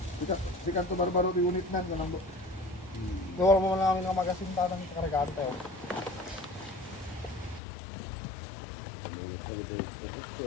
Sikan to barbaro di unit nan kanang do. Wala mo lang ang magasinta ng karagante. Oh.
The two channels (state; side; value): drops out; right; at 7.6 s